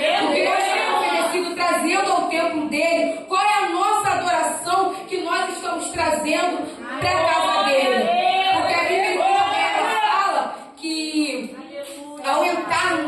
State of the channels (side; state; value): both; identical; correlation 1.00